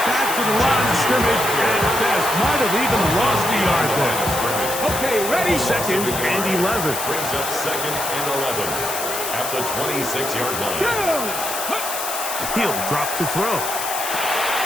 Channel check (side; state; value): left; noise; hiss, 5 dB below the sound